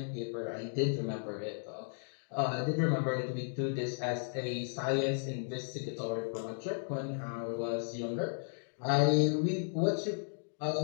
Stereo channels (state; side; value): silent; right; digital silence